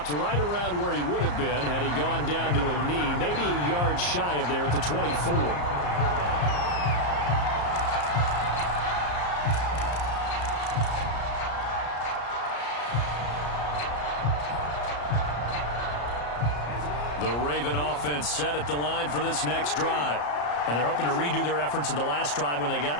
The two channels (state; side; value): late; right; 34 ms